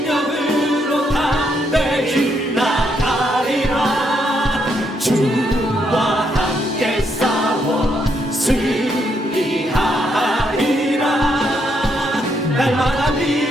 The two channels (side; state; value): both; normal; correlation 0.76